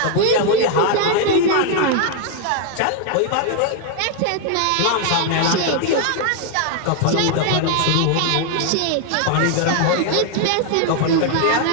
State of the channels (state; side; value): different; both; correlation 0.00